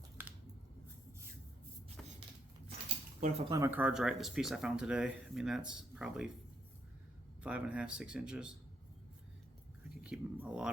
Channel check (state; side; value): normal; both; correlation 0.75